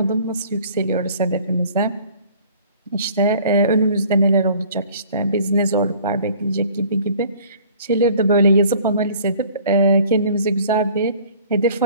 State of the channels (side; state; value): both; inverted; correlation -0.52